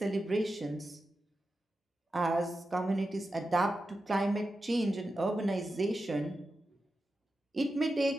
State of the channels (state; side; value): normal; both; correlation 0.91